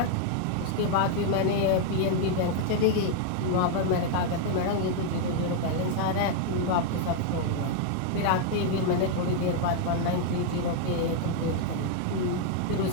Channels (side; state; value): both; different; correlation 0.00